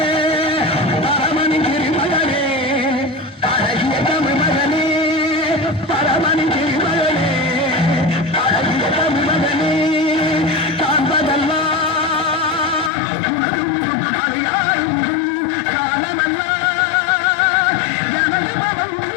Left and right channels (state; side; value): drops out; right; at 12.9 s